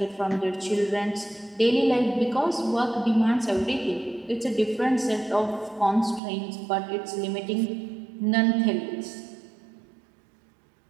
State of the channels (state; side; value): drops out; left; at 6.2 s